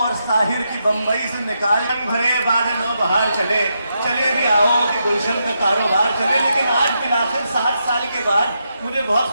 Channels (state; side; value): inverted; both; correlation -0.83